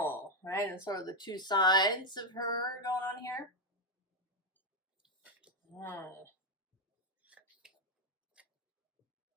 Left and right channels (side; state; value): both; normal; correlation 0.05